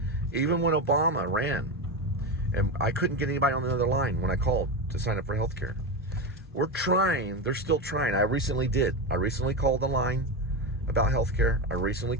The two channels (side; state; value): both; normal; correlation 0.16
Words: Even when Obama ran, and I couldn't get anybody on the other line when I called to sign up for healthcare. We're trying. They're still trying. I recently did. I recently called the line about healthcare. I recently